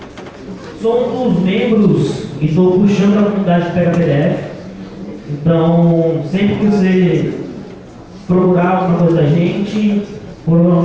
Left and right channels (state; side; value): identical; both; correlation 1.00